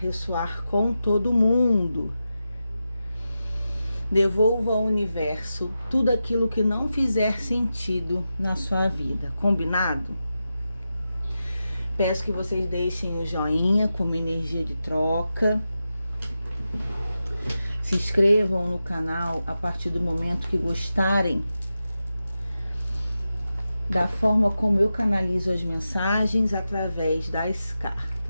com todo mundo. Devolva ao universo tudo aquilo que não fizer sentido na sua vida, combinado? Peço que vocês deixem o joinha como energia de troca. Se inscrevam no canal a partir do momento que gostarem da forma como eu canalizo as mensagens através das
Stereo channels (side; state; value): both; inverted; correlation -0.91